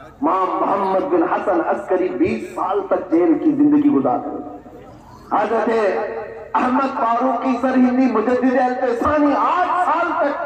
امام محمد بن حسن عسکری 20 سال تک جیل کی زندگی گزارے. حضرت احمد فاروقی سرہندی مجدد التسانی 8 سال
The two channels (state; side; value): identical; both; correlation 1.00